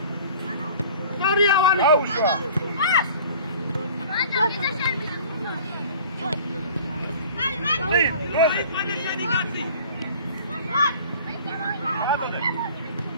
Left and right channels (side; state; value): both; inverted; correlation -0.46